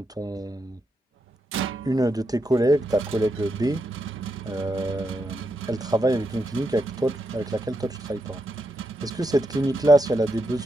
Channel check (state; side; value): normal; both; correlation 0.83